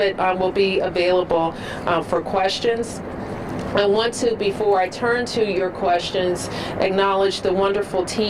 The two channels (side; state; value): both; identical; correlation 1.00